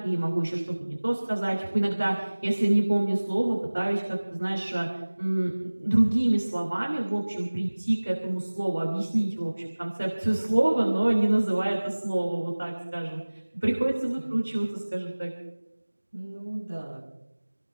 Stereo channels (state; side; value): inverted; both; correlation -1.00